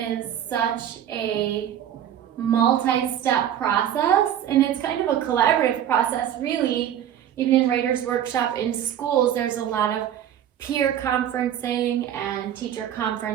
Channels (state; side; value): quieter; left; 10.4 dB